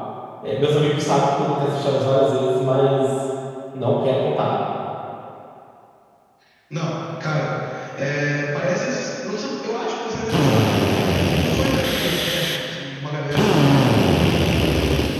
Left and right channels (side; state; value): both; identical; correlation 1.00